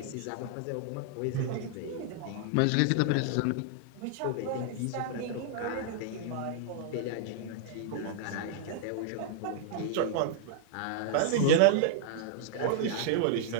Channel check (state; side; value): different; both; correlation -0.01